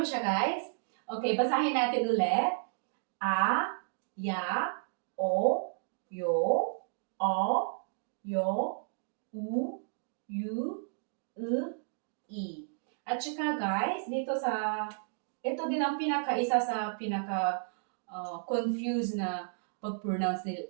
siya guys? Okay, basahin natin ulit. A, ya, o, yo, yu, i. At saka guys, ito din ang isa sa confused na pag-pronounce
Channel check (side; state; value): left; silent; digital silence